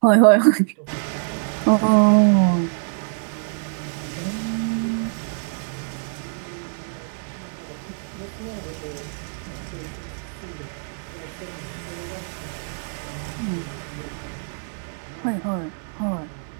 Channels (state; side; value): silent; left; 62 dB below the other